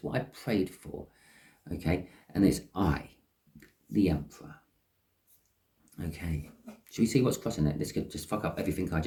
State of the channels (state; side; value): identical; both; correlation 1.00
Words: what I've prayed for. Okay? And it's I, the Emperor. Okay. Should we see what's crossing it? This could just fuck up everything I